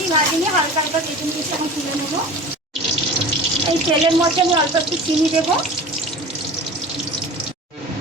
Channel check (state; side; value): normal; both; correlation 0.36